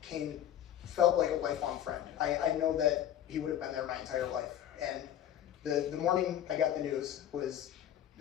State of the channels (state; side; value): quieter; right; 11.0 dB